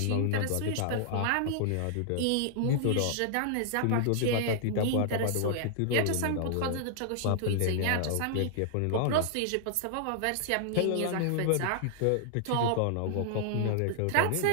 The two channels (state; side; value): different; both; correlation -0.01